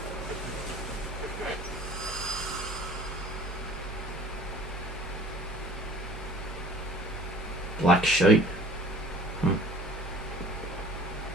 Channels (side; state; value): both; normal; correlation 0.48